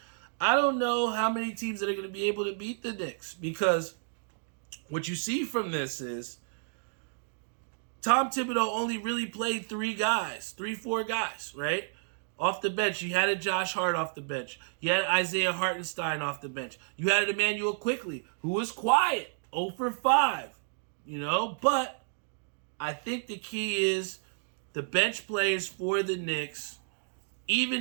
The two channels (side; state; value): left; silent; digital silence